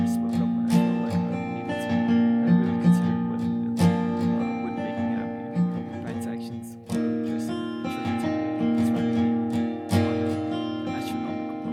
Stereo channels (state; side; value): identical; both; correlation 1.00